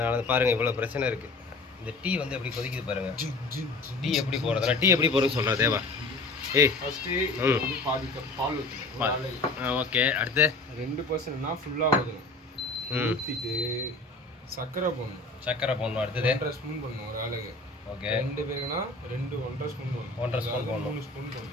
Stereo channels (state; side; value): quieter; right; 3.1 dB